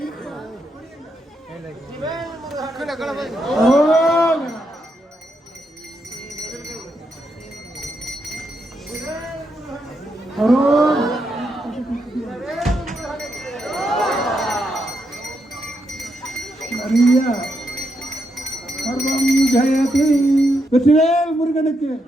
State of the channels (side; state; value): both; normal; correlation 0.81